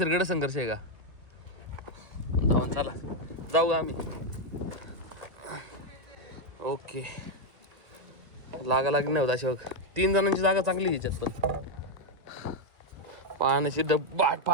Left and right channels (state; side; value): late; left; 2.0 ms